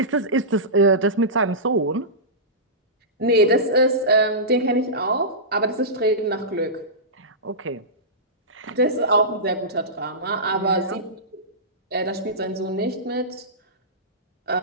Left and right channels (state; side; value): normal; both; correlation -0.18